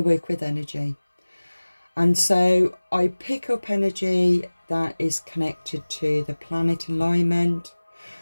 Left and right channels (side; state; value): both; inverted; correlation -1.00